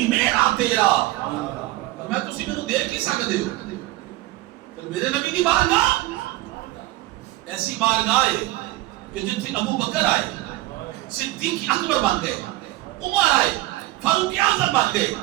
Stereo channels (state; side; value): quieter; left; 18.1 dB